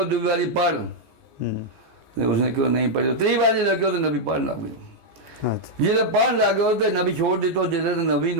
दूसरी बारी पढ़ उसने क्यों नहीं पढ़ी। 3 बारी लगे तो नबी पढ़ लग गयो। अच्छा जिसे पढ़ लग गयो तो नबी छोड़ दितो जिसे तो नबी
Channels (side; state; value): left; late; 14 ms